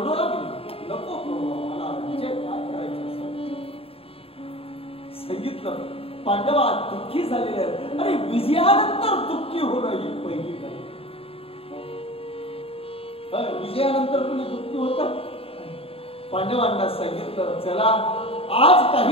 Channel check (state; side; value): late; right; 0.27 ms